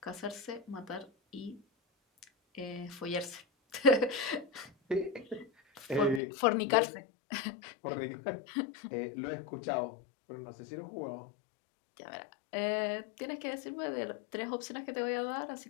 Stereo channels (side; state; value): right; drops out; at 6.2 s